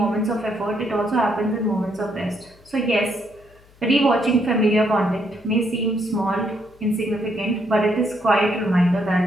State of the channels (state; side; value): noise; left; hum, 28 dB below the sound